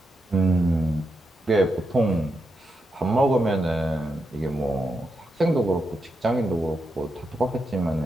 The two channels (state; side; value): normal; both; correlation 0.85